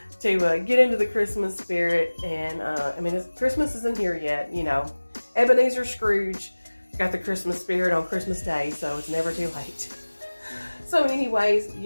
to get into the Christmas spirit. And, I mean, Christmas isn't here yet, you know. Ebenezer Scrooge got the Christmas spirit on Christmas Day, so it's never too late. So anyways,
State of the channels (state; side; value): inverted; both; correlation -1.00